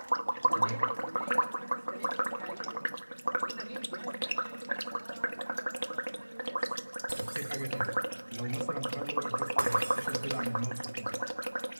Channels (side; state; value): both; inverted; correlation -1.00